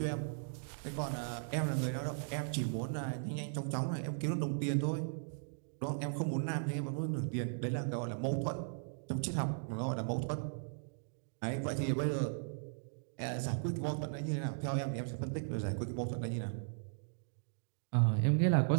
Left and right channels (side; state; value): left; silent; digital silence